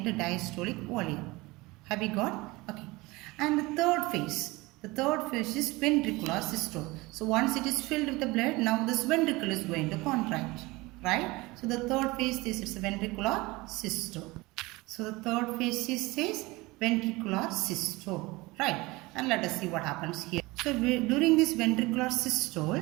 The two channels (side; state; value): left; quieter; 22.1 dB